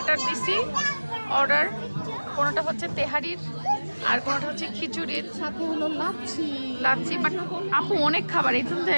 দিছি অর্ডার। কোনোটা হচ্ছে তেহারির আর কোনোটা হচ্ছে খিচুড়ির, সাথে হলো লাচ্ছি। লাচ্ছি। বাট আপু অনেক খাবার, এই জন্য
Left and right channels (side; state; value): both; inverted; correlation -1.00